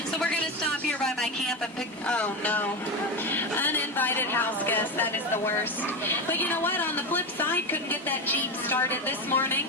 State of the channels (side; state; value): both; normal; correlation 0.16